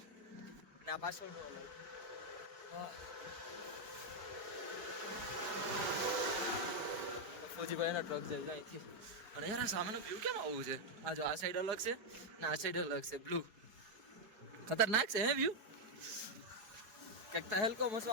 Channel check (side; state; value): left; late; 4.8 ms